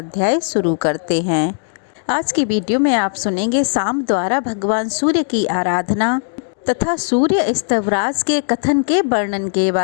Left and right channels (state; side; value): silent; right; digital silence